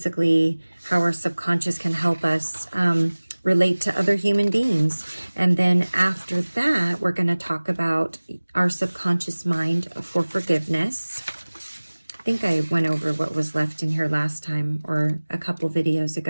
how our subconscious can help us relate to other human beings. And then after that, we're going to talk about our subconscious mind for forgiveness. I think I went over what was left in here last time, or a couple videos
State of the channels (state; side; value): inverted; both; correlation -1.00